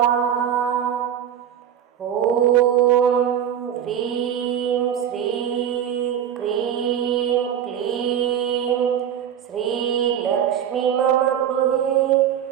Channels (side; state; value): left; quieter; 9.5 dB